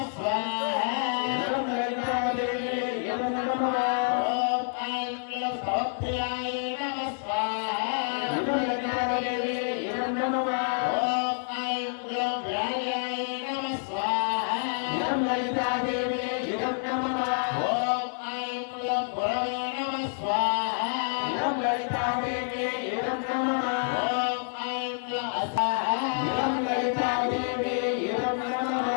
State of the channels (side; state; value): right; silent; 59 dB below the other